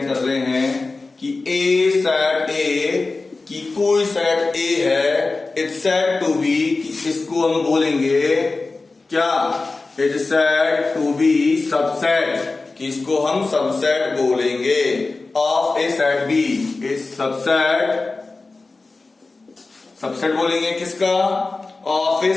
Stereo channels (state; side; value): quieter; right; 3.6 dB